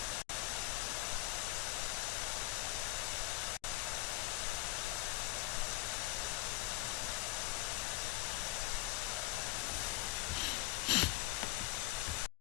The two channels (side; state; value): right; quieter; 18.5 dB